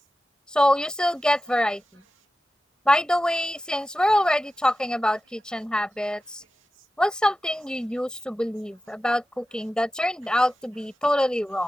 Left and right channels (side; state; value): both; normal; correlation 0.93